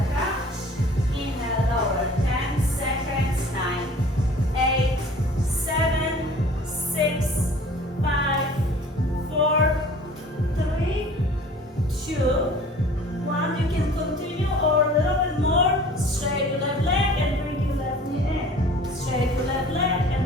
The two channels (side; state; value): both; normal; correlation 0.47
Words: crunch. Inhale, lower. 10 seconds, 9, 8, 7, 6, 5, 4, 3, 2, 1. You can continue or a little bit more. Straight your left leg and bring your left knee in. Straight your left leg